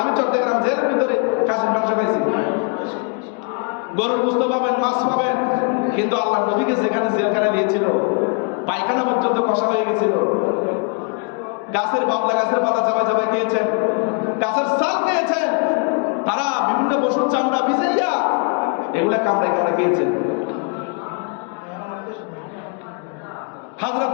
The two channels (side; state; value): right; quieter; 35.7 dB